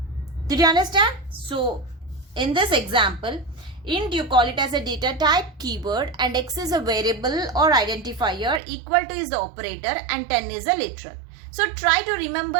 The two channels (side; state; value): left; drops out; at 8.6 s